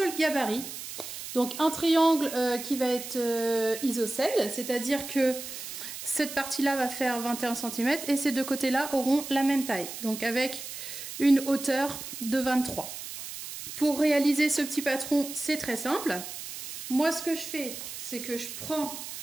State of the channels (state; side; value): noise; right; hiss, 9 dB below the sound